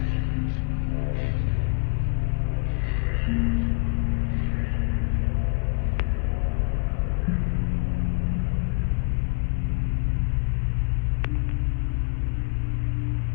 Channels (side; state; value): right; quieter; 32.5 dB